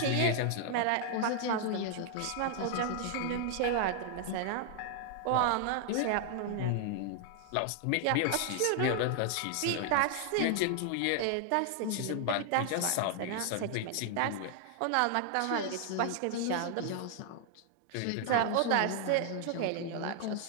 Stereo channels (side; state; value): both; different; correlation 0.00